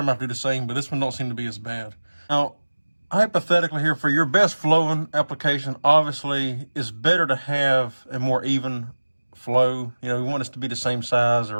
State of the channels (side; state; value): both; inverted; correlation -1.00